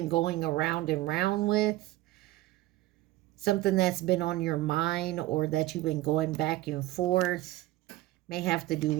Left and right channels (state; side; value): quieter; left; 16.7 dB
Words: going around and round with. Something that's been on your mind or that you've been going back and forth. May have to do